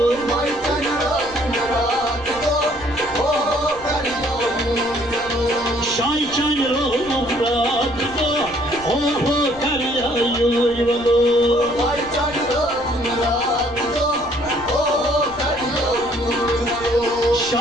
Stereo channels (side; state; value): right; noise; rumble, 20 dB below the sound